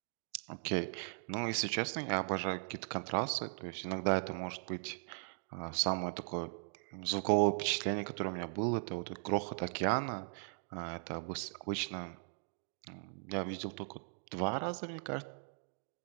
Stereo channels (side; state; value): left; silent; digital silence